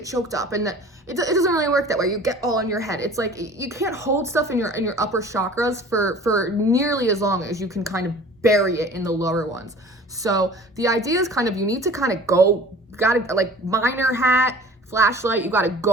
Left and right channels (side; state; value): both; normal; correlation 0.45